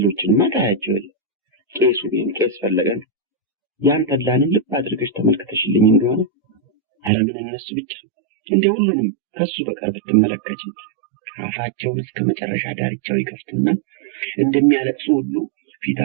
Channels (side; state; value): left; drops out; at 7.1 s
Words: ታያቸው። ቄሱ ግን ቄስ ፈለገን ያን ተድላንም ልብ አድርገሽ ተመልክተሽልኝ እንደሆነ ኧረ ምን እነሱ ብቻ እንደ ሁሉንም ከሱ በቀር ብትመለከች አፋቸውን እስከ መጨረሻ ዳርቻው ይከፍቱና እንደሚያለቅሱ ሁሉ